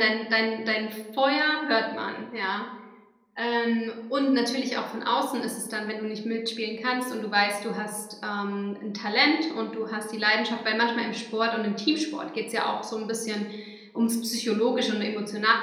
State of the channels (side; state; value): both; identical; correlation 1.00